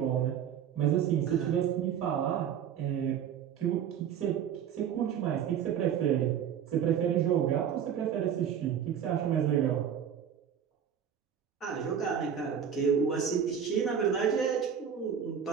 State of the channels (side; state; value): left; quieter; 8.4 dB